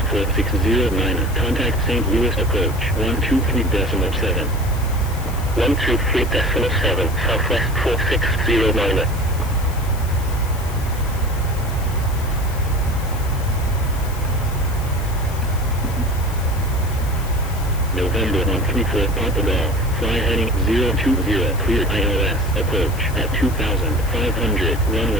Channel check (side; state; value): left; noise; hiss, 16 dB below the sound